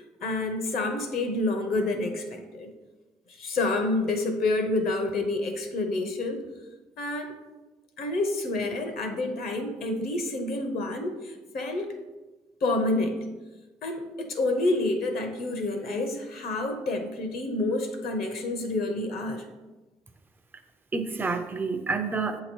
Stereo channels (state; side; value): normal; both; correlation 0.49